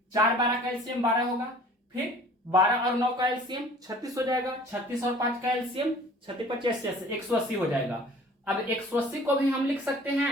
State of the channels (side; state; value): both; normal; correlation 0.48